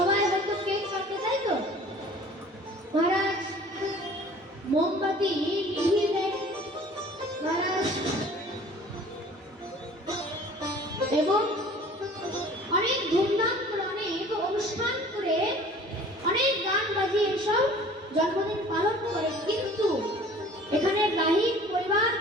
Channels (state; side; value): normal; both; correlation 0.48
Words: হয়তো কেক কাটে, তাই তো? মহারাজ মোমবাতি নিভিয়ে দেয় মহারাজ এবং অনেক ধুমধাম করে অনেক অনুষ্ঠান করে অনেক গান বাজিয়ে এসব জন্মদিন পালন করে, কিন্তু এখানে রাহির পরিবার